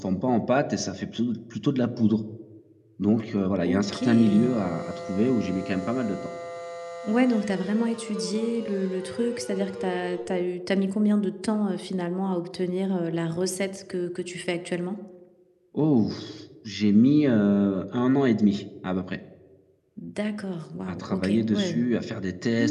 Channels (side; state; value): both; identical; correlation 1.00